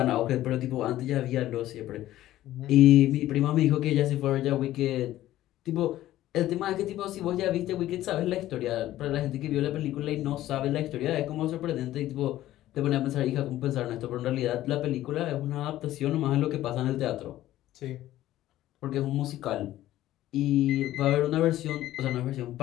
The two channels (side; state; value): right; quieter; 14.3 dB